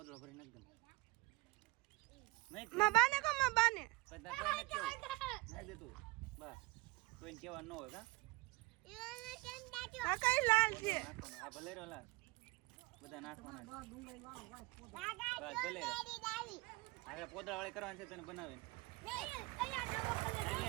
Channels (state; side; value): quieter; left; 23.0 dB